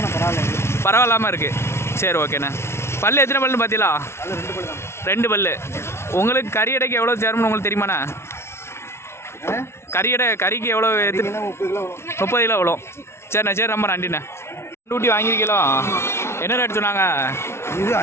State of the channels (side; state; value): right; late; 0.12 ms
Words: பரவாயில்லாமல் இருக்குது. சரி, ஓகேண்ணா. பல்லு எத்தனை பல்லுன்னு பார்த்தீங்களா? 2 பல்லு. உங்களுக்கு கறி எடைக்கு எவ்வளோ சேரணும்னு உங்களுக்கு தெரியுமாண்ணா? கறிக்கு எவ்வளோ? 30 கிலோ எவ்வளோ? சரிண்ணா. சரி, ரொம்ப நன்றிண்ணா. டூட்டி வாங்கியிருக்கீங்களோ? என்ன ரேட் சொன்னாங்க? இது